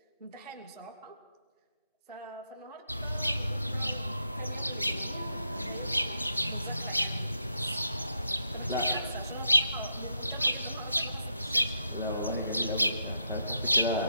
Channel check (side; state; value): both; inverted; correlation -0.80